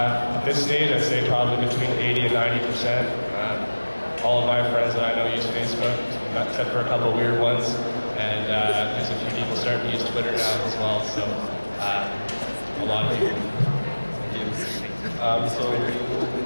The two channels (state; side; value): inverted; both; correlation -1.00